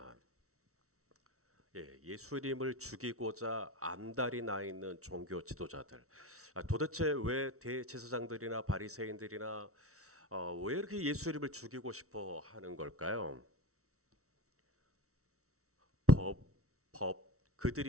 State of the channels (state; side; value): late; left; 0.64 ms